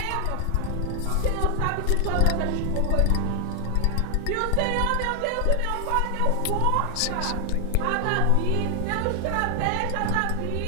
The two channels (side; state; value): both; different; correlation 0.00